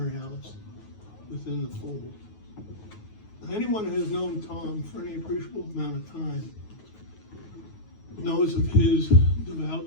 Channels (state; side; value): late; right; 9.4 ms